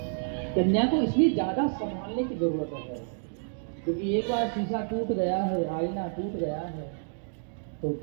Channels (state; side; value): silent; left; digital silence